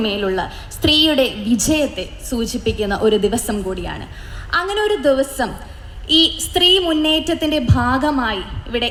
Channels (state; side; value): identical; both; correlation 1.00